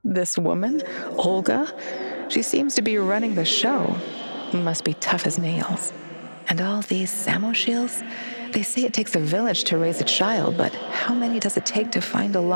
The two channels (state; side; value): inverted; both; correlation -1.00